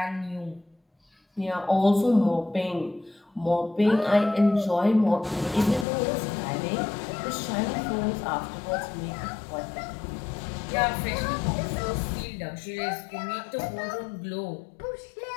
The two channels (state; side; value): drops out; right; at 5.9 s